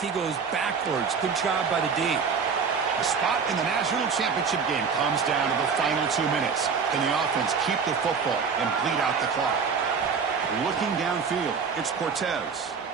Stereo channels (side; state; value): left; quieter; 5.8 dB